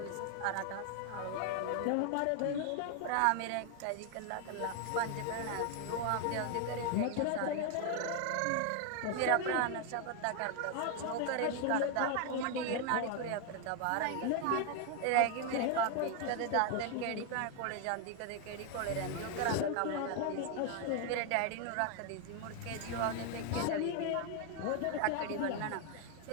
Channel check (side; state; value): both; different; correlation 0.00